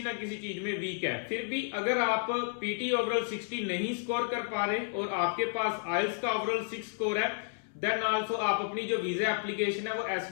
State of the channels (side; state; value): right; silent; 57 dB below the other